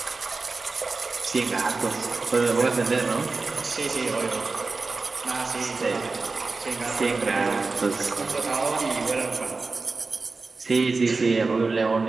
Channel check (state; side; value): quieter; left; 4.0 dB